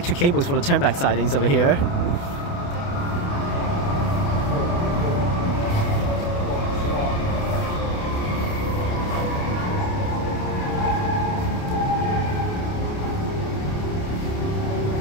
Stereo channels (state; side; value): late; right; 28 ms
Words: cables for the turnback sidings over here.